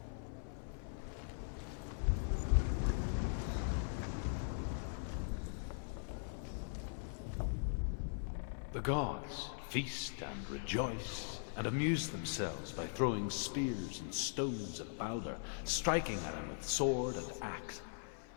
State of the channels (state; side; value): silent; right; 51 dB below the other